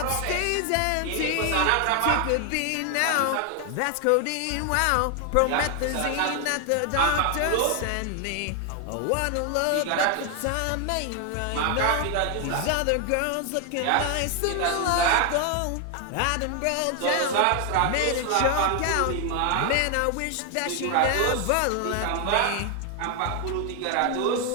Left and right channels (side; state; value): both; different; correlation 0.00